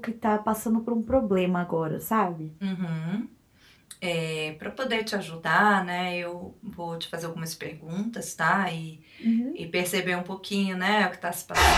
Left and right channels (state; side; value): identical; both; correlation 1.00